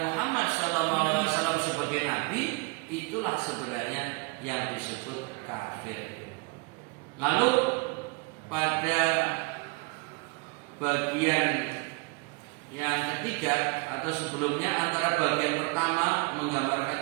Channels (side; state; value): left; quieter; 28.4 dB